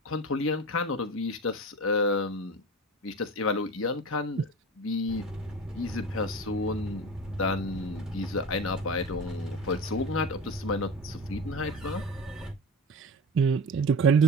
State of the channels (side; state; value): both; normal; correlation 0.31